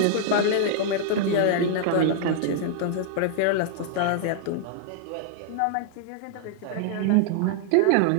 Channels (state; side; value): different; both; correlation 0.00